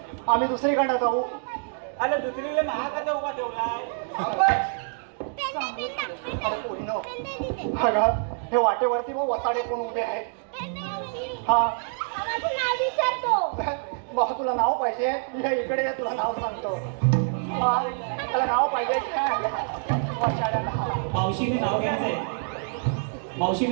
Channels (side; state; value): left; silent; digital silence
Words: आम्ही दुसरीकडे जाऊ. अरे दुसरीला महाकाचा उभा ठेवलाय. अरे पूर्ण अगं हे वाटेवरती मग वसाडे कोण उभे आहेत. हा माझं नाव विचारतो. मग तुला नाव पाहिजे ये इकडे ये तुला नाव सांगतो. हा तुला नाव पाहिजे काय वसाड्याला. मावशीने नाव घ्यायचंय.